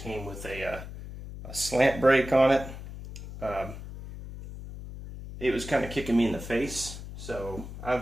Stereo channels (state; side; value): noise; left; hum, 11 dB below the sound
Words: with a slant brake on it. It was kind of kicking me in the face. So